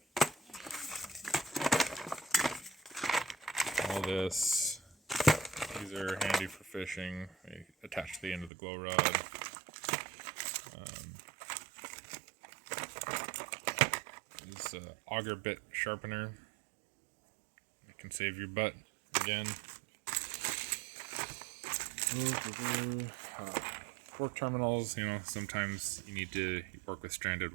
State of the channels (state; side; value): drops out; left; at 8.5 s